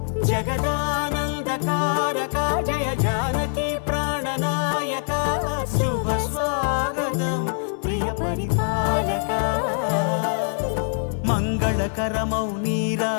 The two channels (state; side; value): silent; right; 63 dB below the other